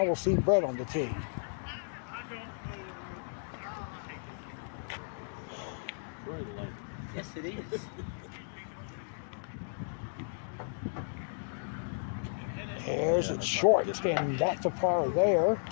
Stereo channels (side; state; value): right; silent; digital silence